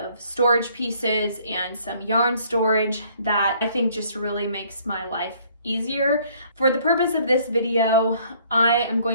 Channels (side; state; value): both; inverted; correlation -0.61